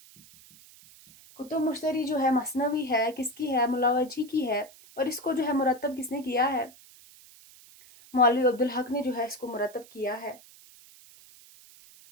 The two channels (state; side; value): noise; right; hiss, 23 dB below the sound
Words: کتب مشتری جو ہے مثنوی ہے، کس کی ہے؟ ملاوجھی کی ہے، اور اس کو جو ہے مرتب کس نے کیا ہے؟ مولوی عبدالحق نے جو ہے اس کو مرتب کیا ہے۔